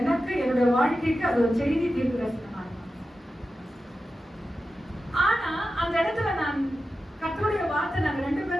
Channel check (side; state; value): both; normal; correlation 0.92